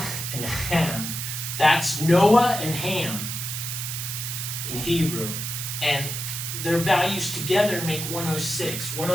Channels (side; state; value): right; noise; hiss, 4 dB below the sound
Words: and Ham. That's Noah and Ham in Hebrew. And their values together make 106.